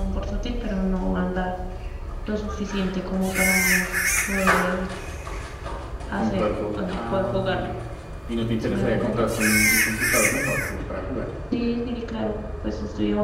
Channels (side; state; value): both; identical; correlation 1.00